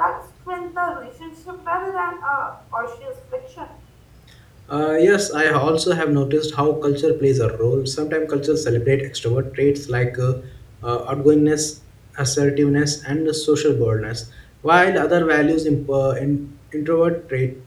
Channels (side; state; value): both; identical; correlation 1.00